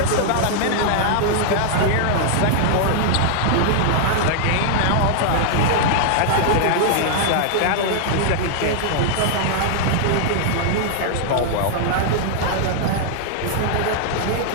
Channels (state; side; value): different; both; correlation -0.01